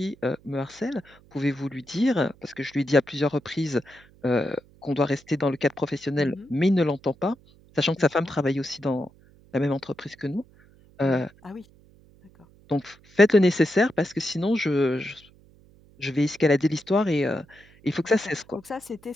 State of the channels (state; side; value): noise; right; hum, 27 dB below the sound